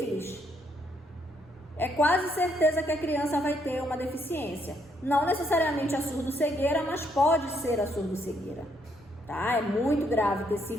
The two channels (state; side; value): normal; both; correlation 0.73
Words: é quase certeza que a criança vai ter uma deficiência. Não necessariamente a surdo-cegueira, mas pode ser a surdo-cegueira, tá? É muito grave ter